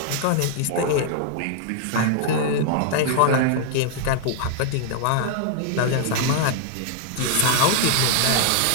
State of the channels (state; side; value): different; both; correlation -0.01